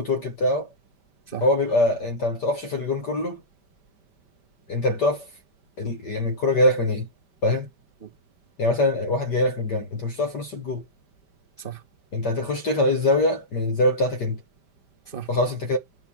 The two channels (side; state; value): right; late; 5.1 ms